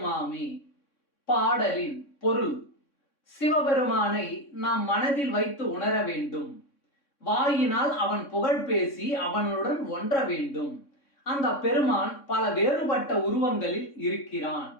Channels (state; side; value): late; right; 3.6 ms